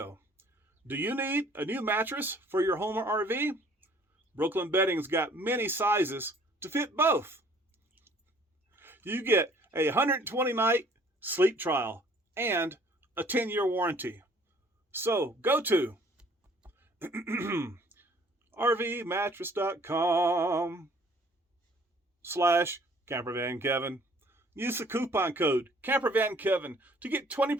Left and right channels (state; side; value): normal; both; correlation 0.56